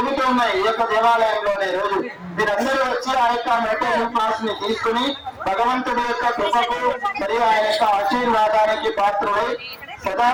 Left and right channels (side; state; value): both; identical; correlation 1.00